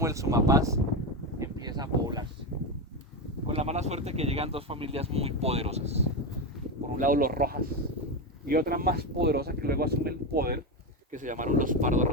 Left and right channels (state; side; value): normal; both; correlation 0.14